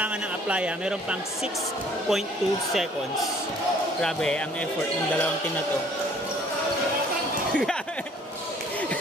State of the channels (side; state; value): both; normal; correlation 0.57